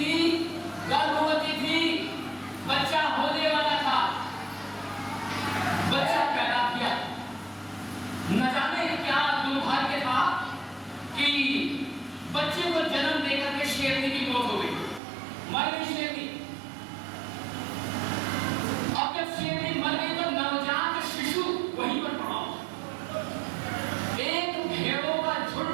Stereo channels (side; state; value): left; drops out; at 15.0 s